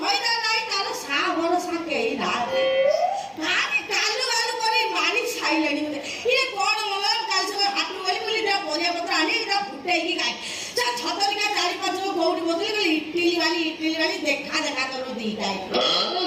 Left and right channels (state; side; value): identical; both; correlation 1.00